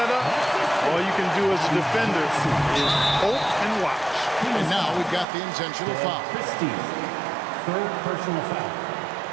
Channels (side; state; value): left; drops out; at 5.2 s